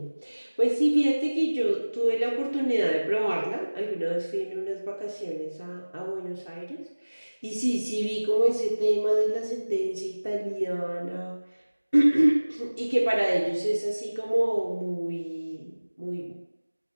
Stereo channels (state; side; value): inverted; both; correlation -1.00